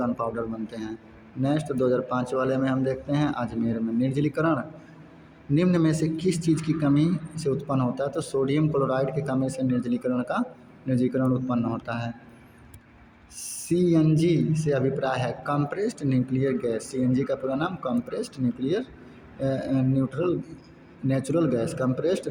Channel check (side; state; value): both; identical; correlation 1.00